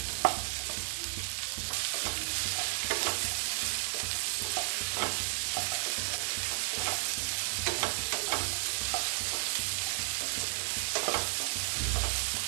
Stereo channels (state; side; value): silent; left; digital silence